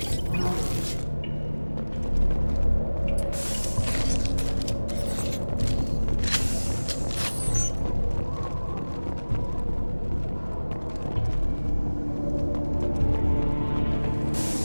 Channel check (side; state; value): both; inverted; correlation -1.00